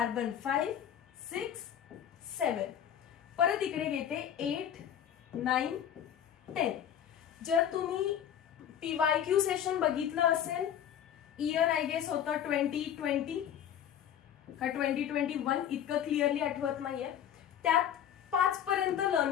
5, 6, 7. परत इकडे घेते 8, 9, 10. जर तुम्ही PYQ सेशन बघितलं असेल, इयर आय गेस होतं 2020 का 2021, इतकं क्लिअरली आठवत नाहीये. त्यात 5 पर्यंत लर्न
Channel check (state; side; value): quieter; right; 9.6 dB